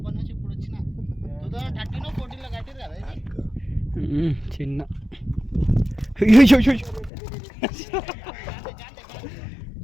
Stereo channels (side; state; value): right; drops out; at 7.1 s